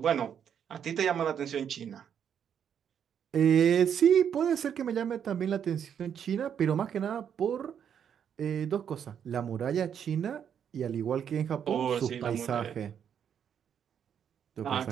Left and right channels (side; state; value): left; quieter; 8.4 dB